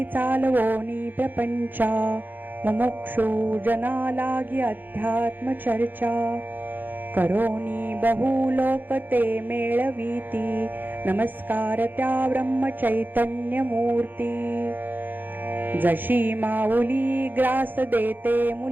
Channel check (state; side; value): late; left; 0.089 ms